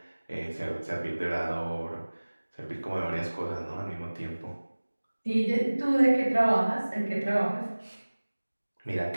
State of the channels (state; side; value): inverted; both; correlation -1.00